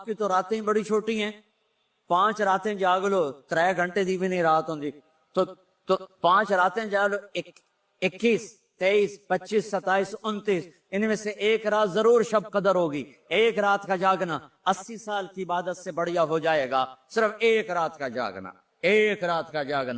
کی تو راتیں بڑی چھوٹی ہیں، 5 راتیں جاگ لو، 3 گھنٹے دی بھی نہیں رات ہوں تو 5 راتیں جاگ لو، 21 23 25 27 29، ان میں سے ایک رات ضرور شب قدر ہوگی۔ ایک رات کا جاگنا 80 سال کی عبادت سے بڑھیا ہو جائے گا، صرف ایک رات کا جاگنا، ایک رات کا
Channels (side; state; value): both; identical; correlation 1.00